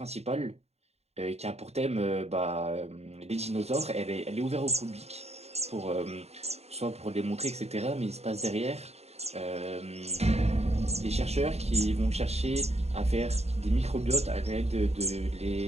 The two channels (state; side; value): late; left; 0.31 ms